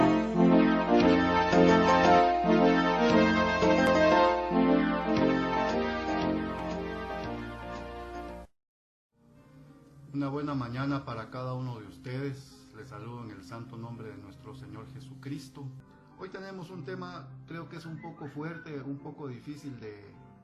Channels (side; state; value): both; identical; correlation 1.00